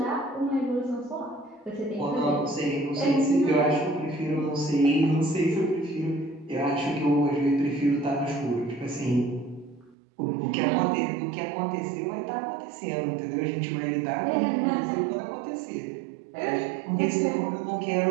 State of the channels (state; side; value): drops out; left; at 10.0 s